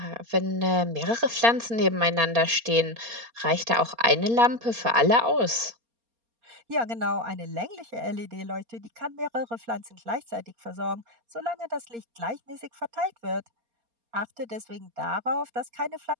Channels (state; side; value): late; left; 4.3 ms